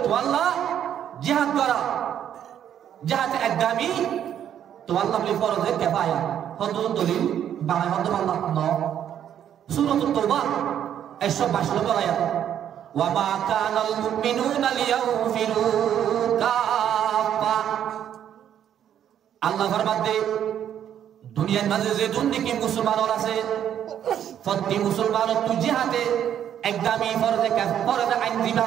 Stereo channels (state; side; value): quieter; left; 9.9 dB